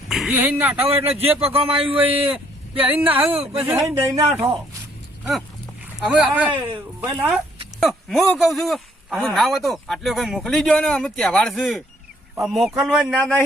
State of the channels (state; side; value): normal; both; correlation 0.65